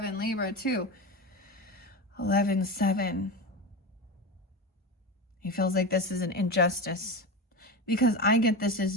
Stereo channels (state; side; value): normal; both; correlation 0.22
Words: Libra too. 11-7. He feels like this is an injustice because I get this as